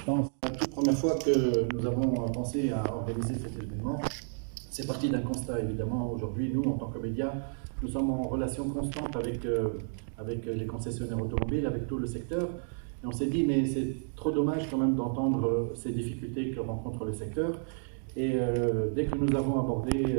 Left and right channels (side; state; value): left; silent; digital silence